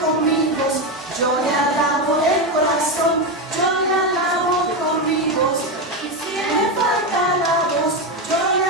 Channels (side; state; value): both; normal; correlation 0.11